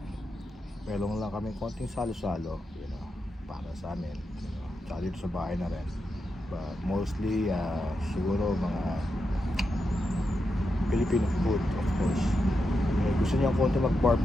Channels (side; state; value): both; normal; correlation 0.86